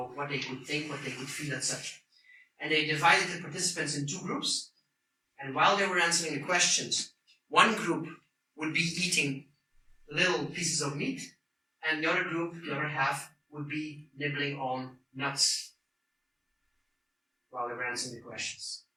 what they could think, what they could feel, etc. And they divided the participants in two groups. And while they were answering the questions, one group would be eating little pieces of meat, and the other group, the other half, would be nibbling on nuts while they were answering the questions.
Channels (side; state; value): both; identical; correlation 1.00